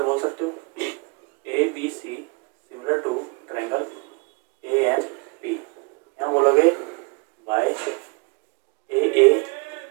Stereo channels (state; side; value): quieter; left; 30.3 dB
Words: बोल सकते हो। A B C similar to triangle A M P, यहाँ बोलोगे बाय ए